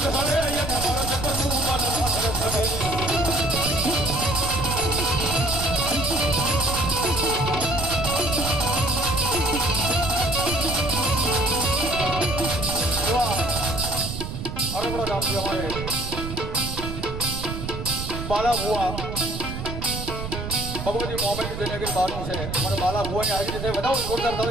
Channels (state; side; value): noise; right; rumble, 6 dB below the sound